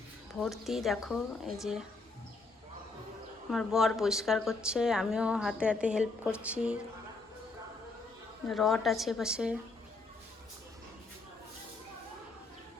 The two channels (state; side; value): quieter; right; 3.6 dB